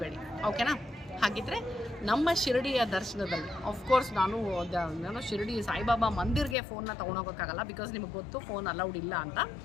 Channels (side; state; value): right; drops out; at 6.6 s